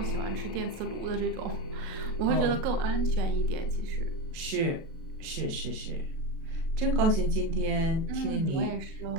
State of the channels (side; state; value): left; late; 37 ms